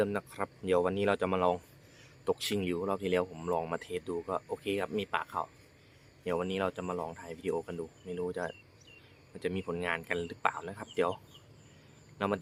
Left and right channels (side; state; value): both; identical; correlation 1.00